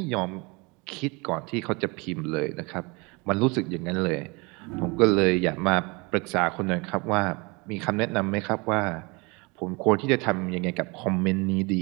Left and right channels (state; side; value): quieter; left; 27.6 dB